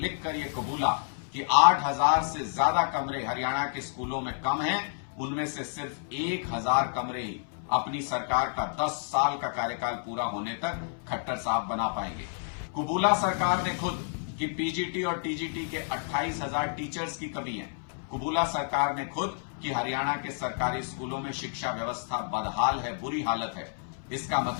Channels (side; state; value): right; silent; 58 dB below the other